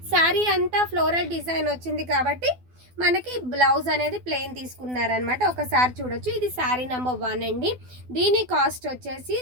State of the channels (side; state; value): left; late; 12 ms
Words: శారీ అంతా ఫ్లోరల్ డిజైన్ వచ్చింది కాబట్టి మనకి బ్లౌజ్ అనేది ప్లెయిన్ తీసుకున్నారనమాట. ఒకసారి చూడొచ్చు. ఇది శారీ నెంబర్ 1 అండి. దీని కాస్ట్ వచ్చేసి